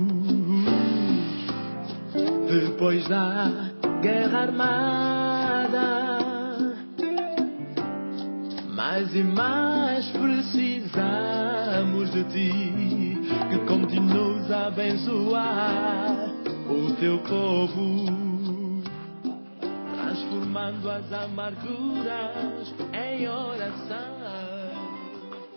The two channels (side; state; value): both; inverted; correlation -1.00